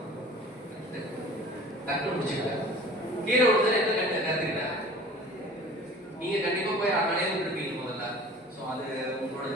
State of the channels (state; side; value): normal; both; correlation 0.44